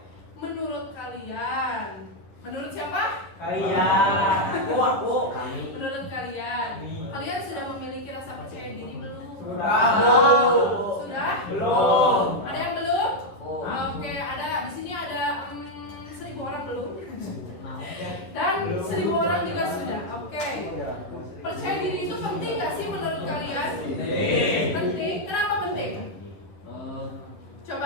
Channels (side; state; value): right; late; 11 ms